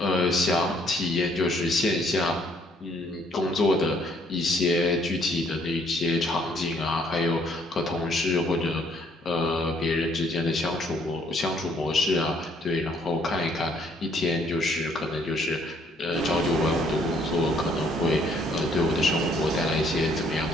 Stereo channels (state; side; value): normal; both; correlation 0.66